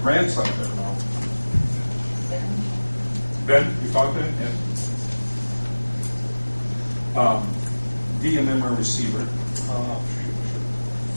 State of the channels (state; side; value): inverted; both; correlation -1.00